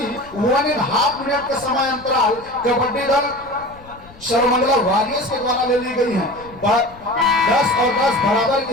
1.5 मिनट का समय अंतराल कबड्डी दल सर्वमंगला वॉरियर्स के द्वारा ले ली गई है। 10 और 10 बराबर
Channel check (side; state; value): left; noise; rumble, 23 dB below the sound